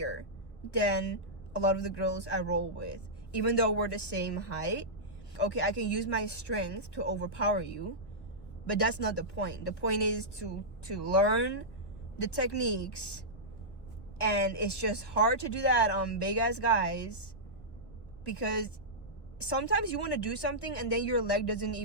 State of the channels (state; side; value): late; right; 1.2 ms